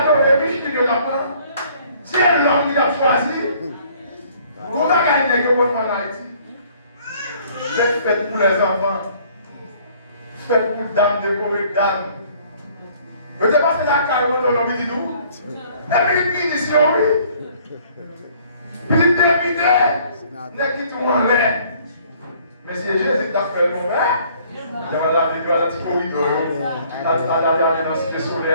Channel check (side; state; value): both; inverted; correlation -0.58